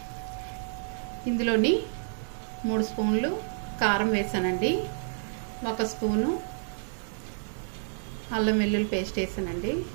ఇందులోని 3 స్పూన్లు కారం వేసానండి, 1 స్పూను అల్లం వెల్లుల్లి పేస్ట్ వేసానండి,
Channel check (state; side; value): silent; left; digital silence